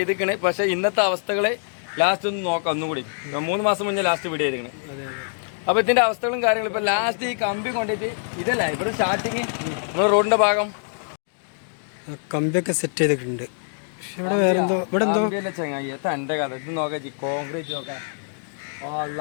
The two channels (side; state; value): right; silent; digital silence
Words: പക്ഷെ ഇന്നത്തെ അവസ്ഥകള് ലാസ്റ്റ് ഒന്ന് നോക്കാം. ഒന്നും കൂടി 3 മാസം മുന്നേ ലാസ്റ്റ് വീഡിയോ ചെയ്തിക്കണ്. അപ്പൊ ഇതിന്റെ അവസ്ഥകളും കാര്യങ്ങളും ഇപ്പൊ ലാസ്റ്റ് ഈ കമ്പി കൊണ്ടിട്ട് ഇതല്ല ഇവിടെ സ്റ്റാർട്ടിങ് നമ്മുടെ റോഡിന്റെ ഭാഗം കമ്പിയൊക്കെ സെറ്റ് ചെയ്തിട്ടുണ്ട്. ഇവിടെ വേറെ എന്തോ ഇവിടെ എന്തോ ചെങ്ങായി എന്റെ കഥ ഇത് നോക്കാം. കോൺക്രീറ്റ് നോക്കാം.